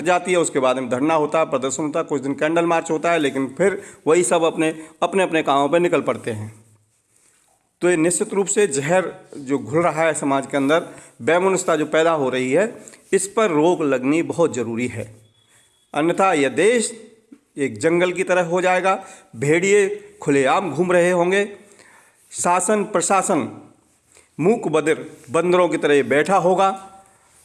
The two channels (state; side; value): identical; both; correlation 1.00